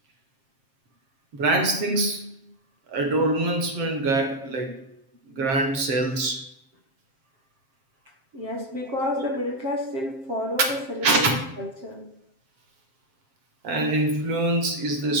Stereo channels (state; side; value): late; left; 7.5 ms